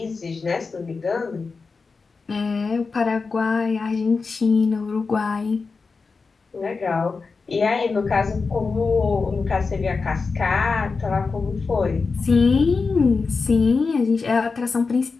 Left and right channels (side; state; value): right; quieter; 4.5 dB